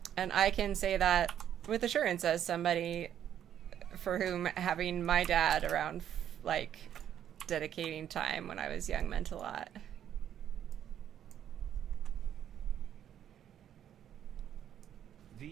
And I can say that with assurance as somebody for whom having my dad around, like, dedicating time when I was young meant a lot.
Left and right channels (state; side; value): quieter; left; 10.0 dB